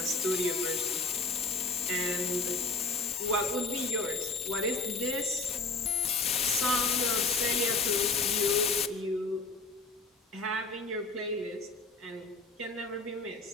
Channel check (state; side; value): quieter; right; 3.9 dB